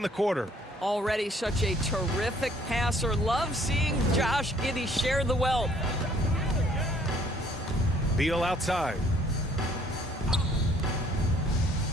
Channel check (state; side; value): normal; both; correlation 0.60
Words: the quarter. Already such a terrific passer. Love seeing Josh Giddey share the wealth. Beal outside.